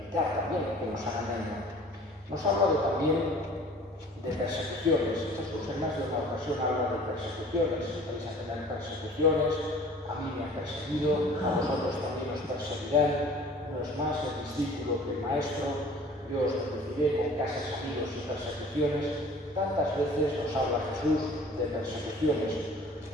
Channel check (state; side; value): normal; both; correlation 0.47